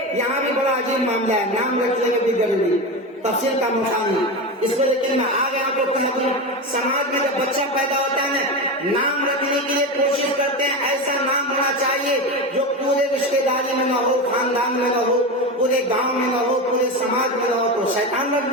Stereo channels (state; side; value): normal; both; correlation 0.20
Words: یہاں بھی بڑا عجیب معاملہ ہے، نام رکھنے میں بھی ضروری، تفصیل کا موقع نہیں، اس میں لیکن میں آگے آپ کو کہہ دوں، سماج میں جب بچہ پیدا ہوتا ہے نام رکھنے کے لیے کوشش کرتے ہیں ایسا نام ہونا چاہیے جو پورے رشتے داری میں نہ ہو، خاندان میں نہ ہو، پورے گاؤں میں نہ ہو، پورے سماج میں نہ ہو، تو شیطان رکھ